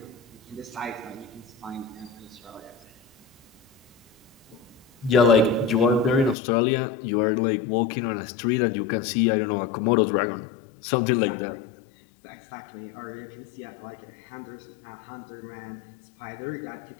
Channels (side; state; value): right; drops out; at 6.4 s